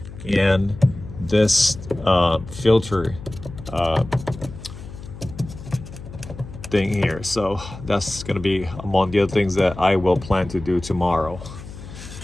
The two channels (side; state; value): left; noise; hum, 14 dB below the sound